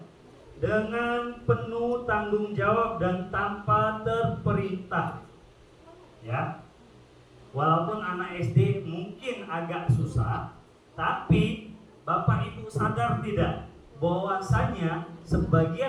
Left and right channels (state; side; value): identical; both; correlation 1.00